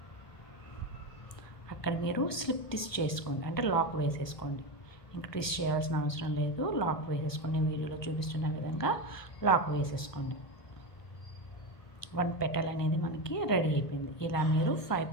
అక్కడ మీరు స్లిప్ ట్విస్ట్ చేసుకోండి, అంటే లాక్ వేసేసుకోండి. ఇంకా ట్విస్ట్ చేయాల్సిన అవసరం లేదు, లాక్ వేసేసుకోండి. వీడియోలో చూపిస్తున్న విధంగా లాక్ వేసేసుకోండి. 1 పెటల్ అనేది మనకి రెడీ అయిపోయింది. ఇలా మీరు 5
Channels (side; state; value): right; late; 1.3 ms